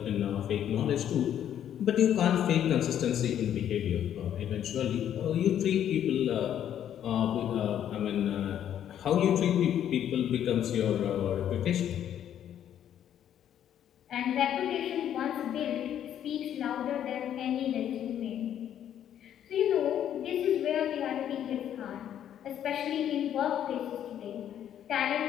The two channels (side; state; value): right; quieter; 10.2 dB